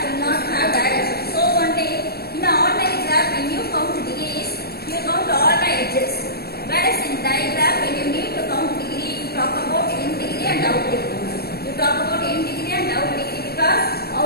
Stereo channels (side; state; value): right; late; 0.46 ms